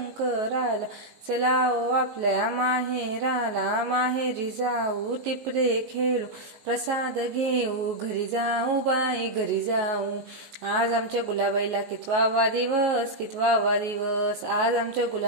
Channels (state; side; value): late; left; 19 ms